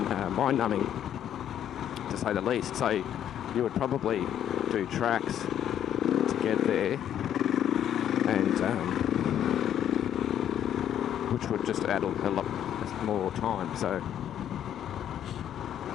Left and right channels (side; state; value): right; quieter; 10.3 dB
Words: mind-numbing, to say the least. So you would probably do tracks to get there, and which would just add a lot more time. So